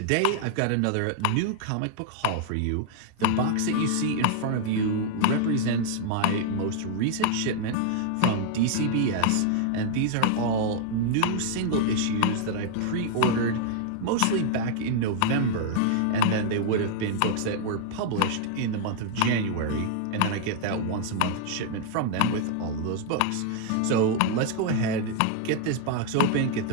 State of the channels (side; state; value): both; different; correlation 0.00